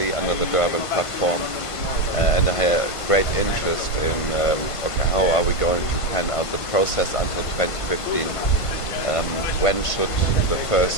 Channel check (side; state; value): right; late; 1.5 ms